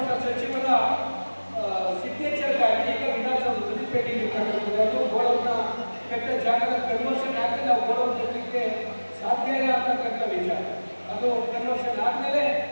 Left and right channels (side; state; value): both; inverted; correlation -1.00